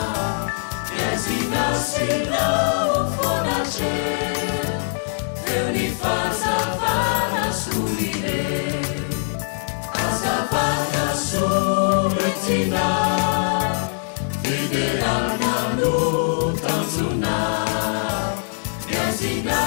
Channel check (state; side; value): silent; right; digital silence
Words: iazinasinao fonace eo ny fazavana solire azavana soletina fiderana no tanjona